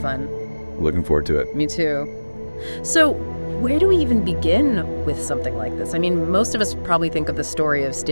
Looking forward to it. Me too. So, where do we even begin with something like this? I mean, most of us probably think of the story of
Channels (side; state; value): both; inverted; correlation -1.00